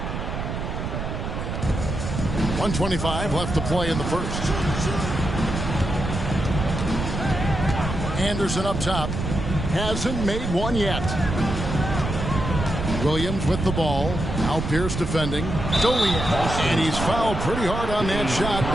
.125 left to play in the first. Anderson up top. Hasn't made one yet. Williams with the ball. Now Pierce defending. And he's fouled pretty hard on that shot,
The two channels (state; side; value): noise; right; rumble, 4 dB below the sound